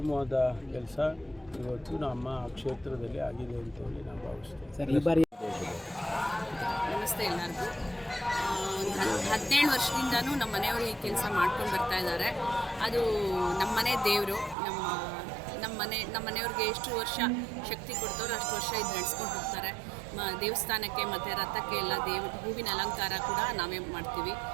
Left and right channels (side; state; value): left; drops out; at 14.6 s